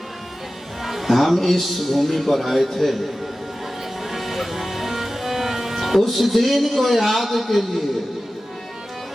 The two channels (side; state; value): both; normal; correlation 0.95